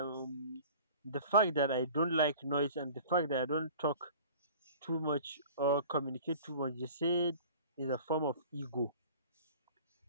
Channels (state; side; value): inverted; both; correlation -0.44